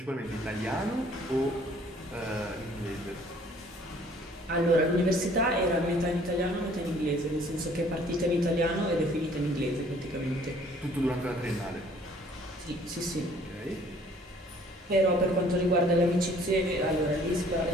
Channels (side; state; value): both; normal; correlation 0.57